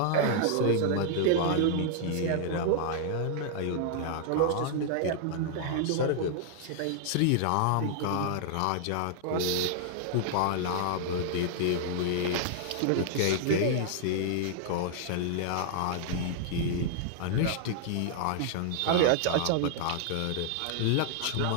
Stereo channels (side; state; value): both; different; correlation -0.01